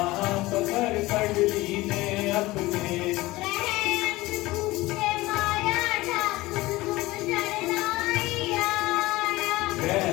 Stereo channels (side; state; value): right; quieter; 19.4 dB